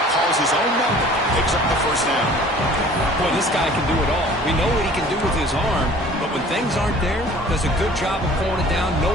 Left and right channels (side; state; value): both; normal; correlation 0.49